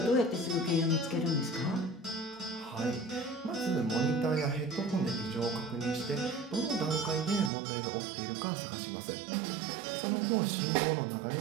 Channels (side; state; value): left; drops out; at 7.5 s